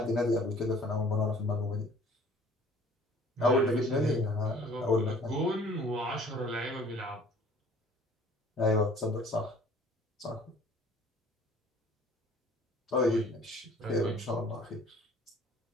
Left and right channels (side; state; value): both; normal; correlation 0.52